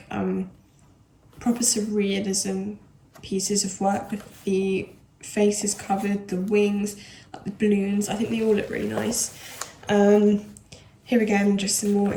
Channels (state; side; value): identical; both; correlation 1.00